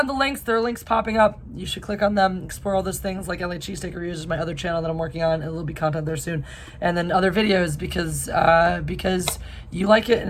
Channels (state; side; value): identical; both; correlation 1.00